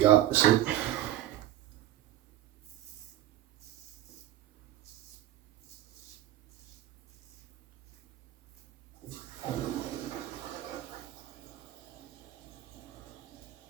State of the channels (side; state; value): left; quieter; 13.6 dB